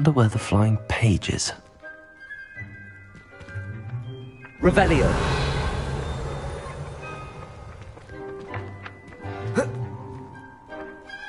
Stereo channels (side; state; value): both; identical; correlation 1.00